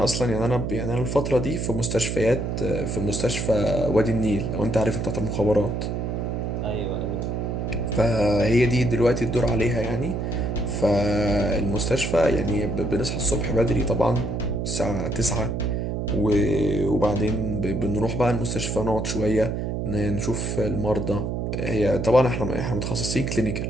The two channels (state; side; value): noise; right; hum, 2 dB below the sound